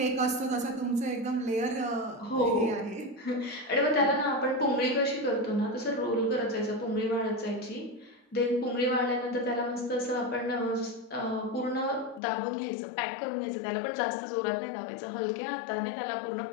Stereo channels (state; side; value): drops out; right; at 12.2 s